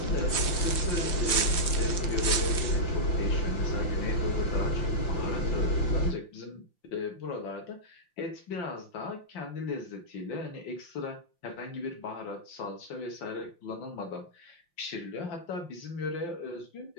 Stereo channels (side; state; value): right; late; 5.8 ms